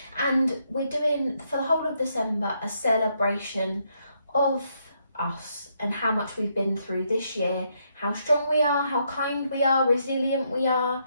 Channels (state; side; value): inverted; both; correlation -0.76